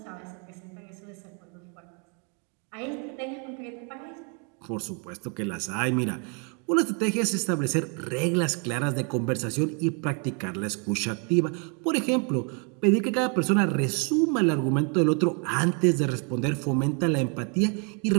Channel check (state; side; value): quieter; left; 37.3 dB